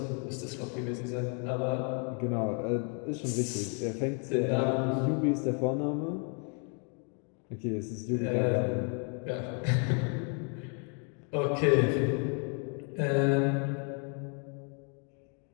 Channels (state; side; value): quieter; right; 39.7 dB